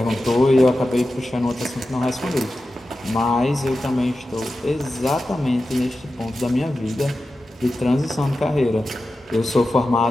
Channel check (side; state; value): both; normal; correlation 0.93